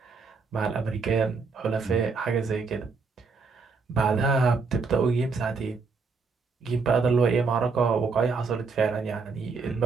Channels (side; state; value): left; quieter; 4.6 dB